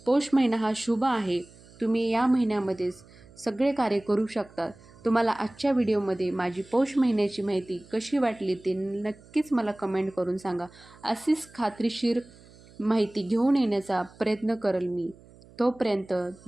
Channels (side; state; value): right; noise; hum, 24 dB below the sound